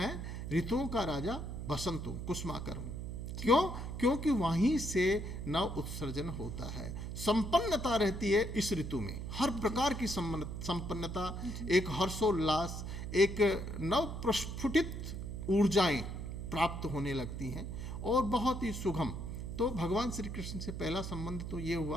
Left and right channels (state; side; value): noise; right; hum, 6 dB below the sound